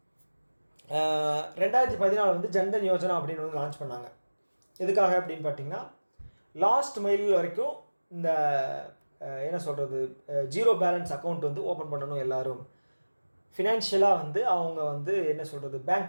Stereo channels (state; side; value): inverted; both; correlation -1.00